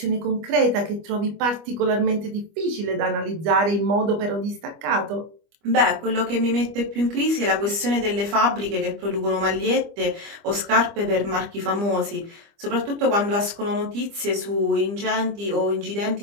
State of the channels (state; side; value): late; left; 25 ms